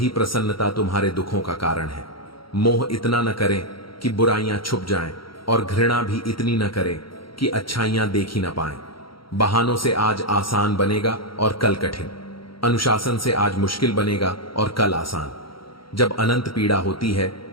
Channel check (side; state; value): right; late; 0.74 ms